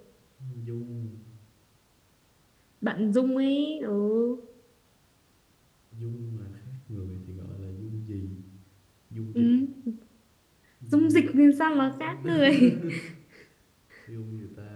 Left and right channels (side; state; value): both; identical; correlation 1.00